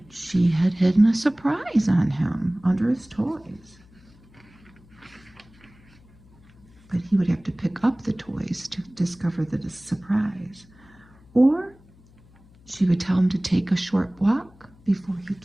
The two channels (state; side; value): noise; left; hum, 27 dB below the sound